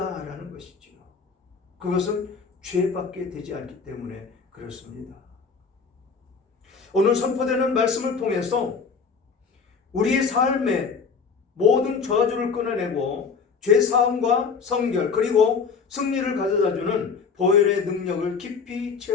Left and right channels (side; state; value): right; quieter; 5.5 dB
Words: 것이죠. 그것은 죄밖에 되지 않기 때문에 그렇습니다. 오늘 선포되는 말씀을 통해서 우리의 삶의 모든 저주를 끊어내고 죄사함과 성결 그리고 승리를 가져다주는 보혈의 능력을 깊이